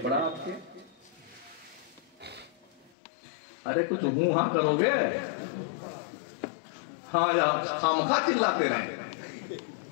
आपके? अरे कुछ हूं हां करोगे, हाँ आप खामखा चिल्लाते रहे।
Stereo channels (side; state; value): right; drops out; at 2.9 s